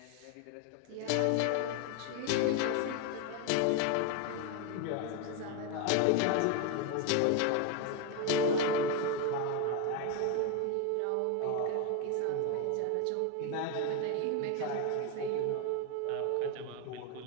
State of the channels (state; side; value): different; both; correlation 0.01